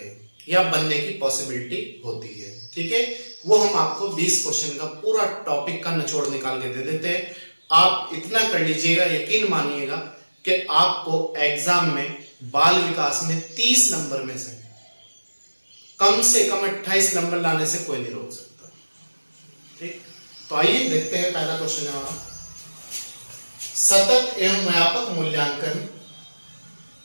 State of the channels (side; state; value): both; inverted; correlation -1.00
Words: या बनने की पॉसिबिलिटी होती है। ठीक है, वो हम आपको 20 क्वेश्चन का पूरा टॉपिक का निचोड़ निकाल के दे देते हैं। आप इतना कर लीजिएगा, यकीन मानिएगा कि आपको एग्जाम में बाल विकास में 30 नंबर में से कम 28 नंबर लाने से कोई नहीं रोक सकता। ठीक, तो आइए देखते हैं। पहला क्वेश्चन है हमारा, सतत एवं व्यापक मूल्यांकन।